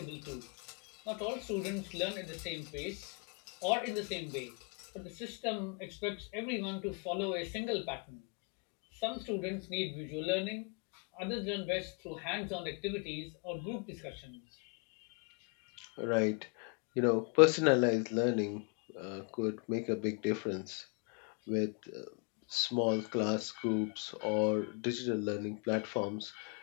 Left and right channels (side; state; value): right; quieter; 35.2 dB